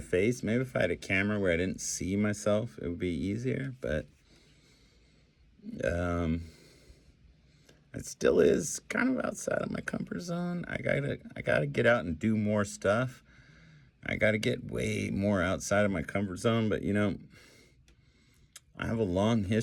face. Maybe if I had a camera where I didn't see myself, it would be easier. But it still is kind of outside of my comfort zone. I gotta get out and do more stuff. I gotta get way more outside of my comfort zone. But I have a long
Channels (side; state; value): both; identical; correlation 1.00